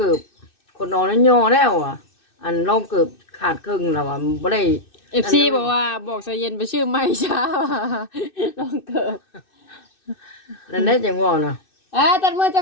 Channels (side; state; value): right; late; 2.6 ms